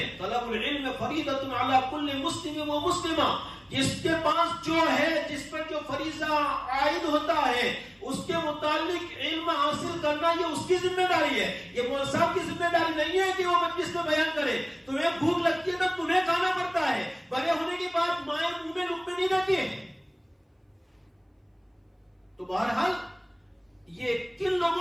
طلب العلم فریضۃ علی کل مسلم و مسلمہ. جس کے پاس جو ہے, جس پر جو فریضہ عائد ہوتا ہے, اس کے متعلق علم حاصل کرنا یہ اس کی ذمہ داری ہے. یہ مولوی صاحب کی ذمہ داری نہیں ہے کہ وہ مجلس میں بیان کرے. تمہیں بھوک لگتی ہے تو تمہیں کھانا پڑتا ہے, بڑے ہونے کے بعد مائیں منہ میں لقمے نہیں دیتی ہے. تو بہرحال یہ کن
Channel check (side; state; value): both; identical; correlation 1.00